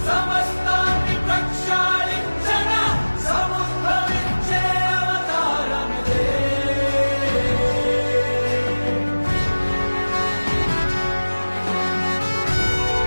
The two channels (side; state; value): both; inverted; correlation -1.00